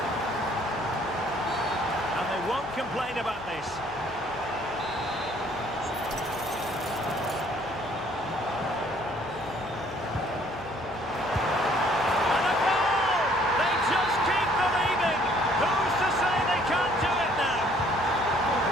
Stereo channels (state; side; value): noise; left; hum, 21 dB below the sound